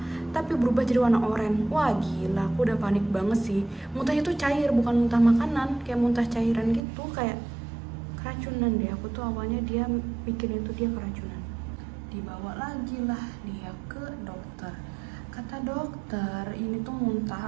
tapi berubah jadi warna oranye. Wah gila, aku udah panik banget sih. Muntahnya tuh cair, bukan muntah makanan, kayak muntah cairan gitu, kayak keracunan deh. Aku tuh awalnya dia pikirin itu dia keracunan. Dibawa lagi lah dia ke dokter. Kata dokter ini tuh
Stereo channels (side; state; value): left; drops out; at 6.8 s